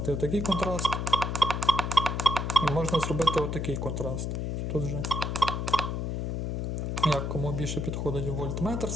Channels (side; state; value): left; noise; hum, 2 dB below the sound